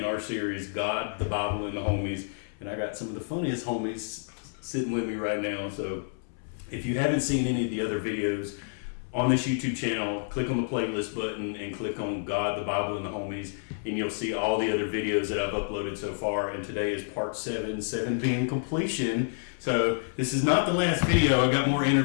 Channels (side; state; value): right; silent; 59 dB below the other